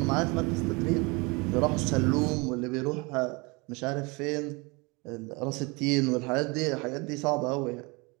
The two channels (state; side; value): quieter; left; 27.3 dB